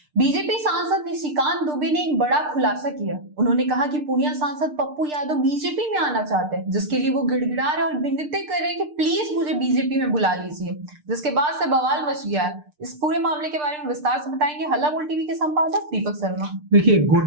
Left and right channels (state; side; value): late; left; 6.7 ms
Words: बीजेपी सांसद निशिकांत दुबे ने एक बड़ा खुलासा किया। उन्होंने कहा कि पूर्णिया सांसद पप्पू यादव बीजेपी में आना चाहते हैं, जिसके लिए वो गिड़गिड़ा रहे और विनती कर रहे हैं कि प्लीज मुझे बीजेपी में बुला लीजिए, जिसके बाद से बवाल मच गया है। इस पूरे मामले के बारे में विस्तार से बताएंगे हल्ला बोल टीवी के संपादक दीपक शर्मा। देखिए,